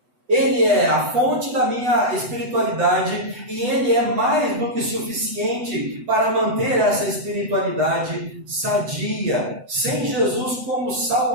Ele é a fonte da minha espiritualidade e Ele é mais do que suficiente para manter essa espiritualidade sadia. Sem Jesus como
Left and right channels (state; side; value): late; left; 8.0 ms